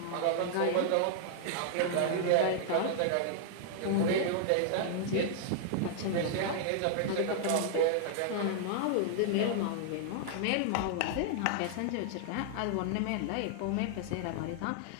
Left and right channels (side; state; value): both; different; correlation -0.01